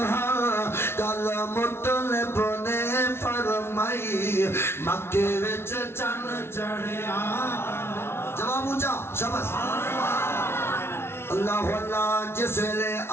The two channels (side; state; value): right; late; 0.12 ms